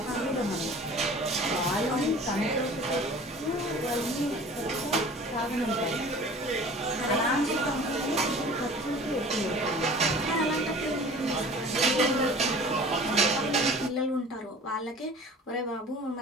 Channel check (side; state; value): both; normal; correlation 0.44